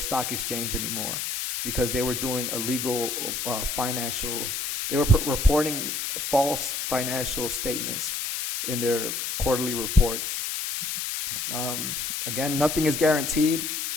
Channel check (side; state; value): left; noise; hiss, 3 dB below the sound